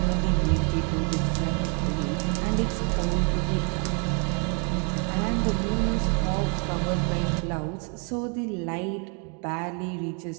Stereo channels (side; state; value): left; quieter; 37.5 dB